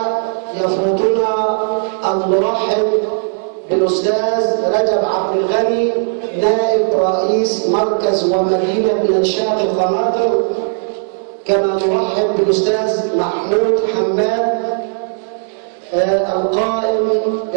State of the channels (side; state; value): left; silent; digital silence